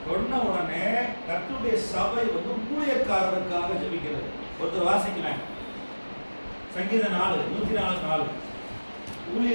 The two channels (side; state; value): both; inverted; correlation -1.00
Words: கொன்ன உடனே கர்த்தருடைய சபை வந்து ஊழியக்காரருக்காக ஜெபிக்கிறது. ஒருத்தர் வாசிக்கலாம். சங்கீதம் 104